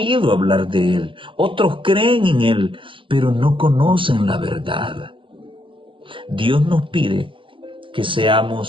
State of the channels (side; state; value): left; late; 0.25 ms